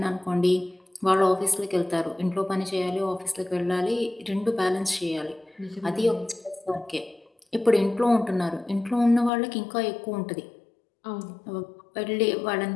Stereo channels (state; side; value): drops out; right; at 9.3 s